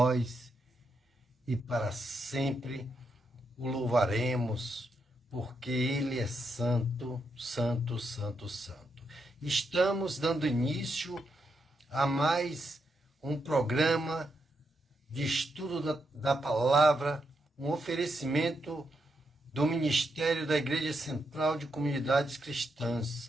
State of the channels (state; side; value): normal; both; correlation 0.82